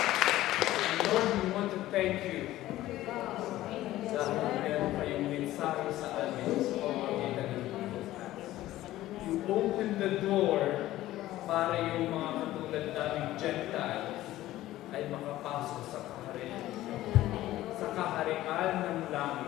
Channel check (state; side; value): quieter; right; 15.3 dB